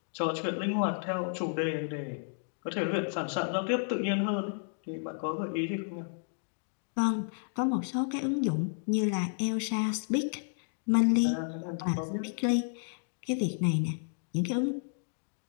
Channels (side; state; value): right; silent; digital silence